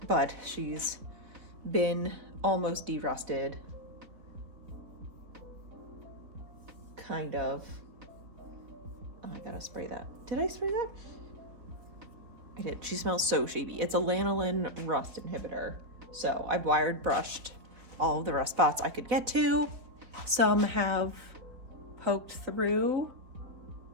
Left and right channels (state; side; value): late; left; 3.9 ms